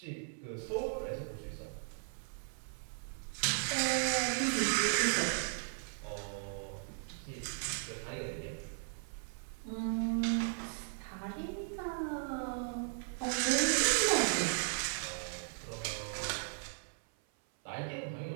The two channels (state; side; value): silent; left; 53 dB below the other